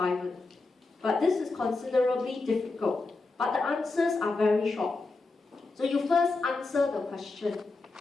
But this is considerably difficult. But the answers are very short. So you first answer the question.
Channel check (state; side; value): quieter; right; 3.6 dB